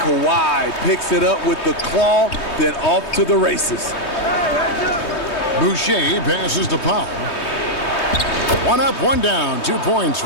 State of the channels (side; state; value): right; late; 3.2 ms